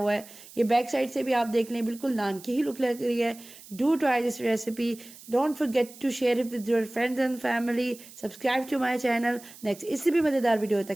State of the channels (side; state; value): right; noise; hiss, 19 dB below the sound